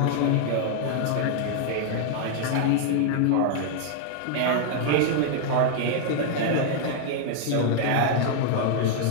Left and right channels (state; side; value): different; both; correlation 0.00